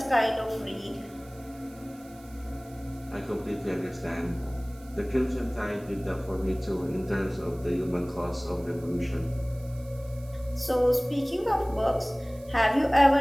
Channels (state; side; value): noise; right; hiss, 24 dB below the sound